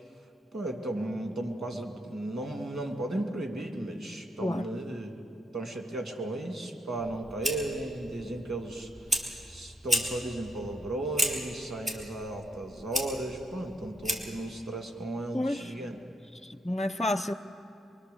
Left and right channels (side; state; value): both; normal; correlation 0.77